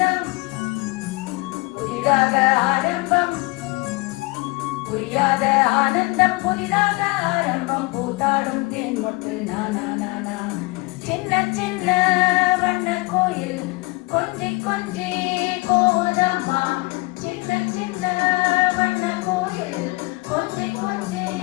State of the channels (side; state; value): right; quieter; 25.2 dB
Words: புதிதாக ஆரம்பம் புரியாத ஆனந்தம் புதிதாக ஆரம்பம் பூத்தாடும் தேன் மொட்டு நானா நானா சின்ன சின்ன வண்ண கோயில் கொஞ்சி கொஞ்சி கோதம்மா சின்ன சின்ன வண்ண கோயில் கொஞ்சி கொஞ்சி